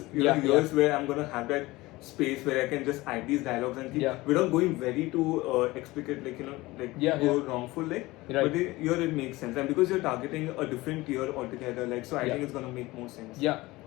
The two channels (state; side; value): quieter; right; 20.1 dB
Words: here's where I'm going to have that space where I can just add these dialogues and keep, without going very too explicit, go wrongful, like. Right. But here it makes sense, and because you're targeting a different tier altogether, like, so I think it's gonna make more sense. Yeah,